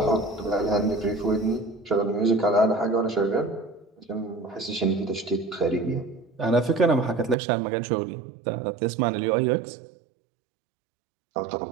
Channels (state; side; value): drops out; left; at 7.4 s